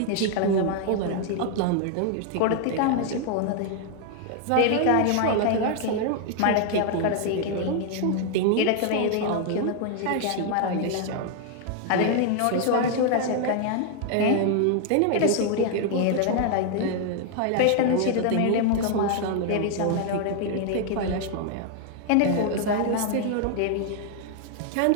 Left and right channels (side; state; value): both; different; correlation 0.00